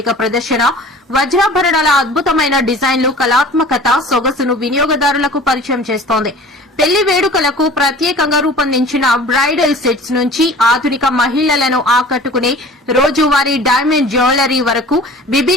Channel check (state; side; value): normal; both; correlation 0.43